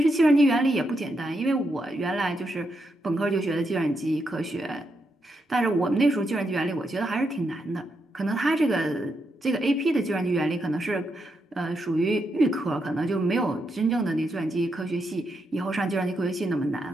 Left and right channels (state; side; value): normal; both; correlation 0.82